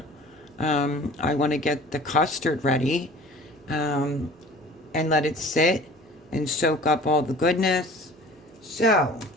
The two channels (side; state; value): both; normal; correlation 0.45